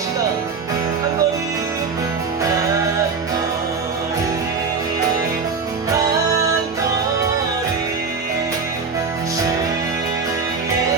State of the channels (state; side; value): quieter; left; 5.0 dB